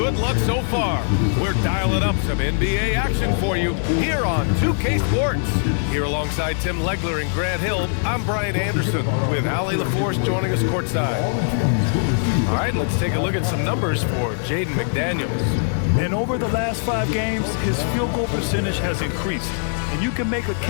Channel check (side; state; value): right; silent; digital silence